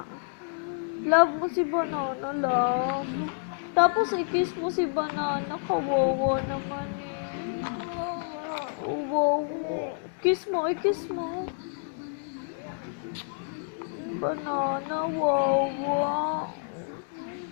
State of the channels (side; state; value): right; silent; digital silence